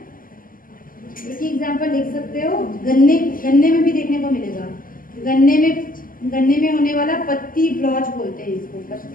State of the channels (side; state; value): right; late; 0.41 ms